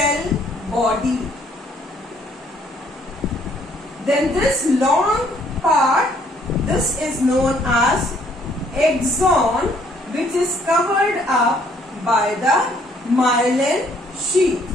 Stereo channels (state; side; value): normal; both; correlation 0.64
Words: body. Then this long part, this is known as axon, which is covered up by the myelin sheath.